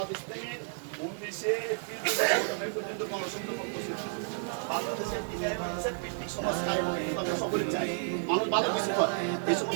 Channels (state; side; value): silent; left; 57 dB below the other